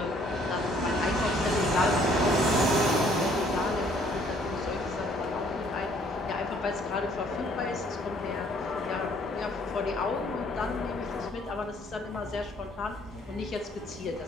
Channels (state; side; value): normal; both; correlation 0.62